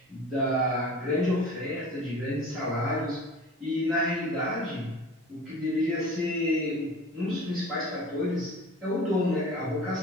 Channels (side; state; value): both; normal; correlation 0.40